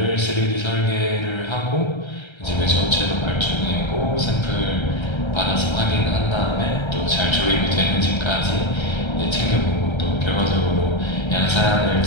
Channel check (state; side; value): late; right; 1.3 ms